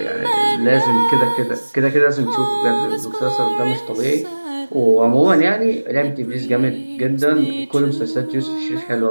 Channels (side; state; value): both; inverted; correlation -1.00